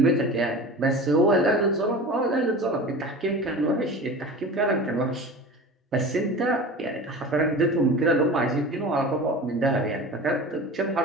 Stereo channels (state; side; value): normal; both; correlation 0.35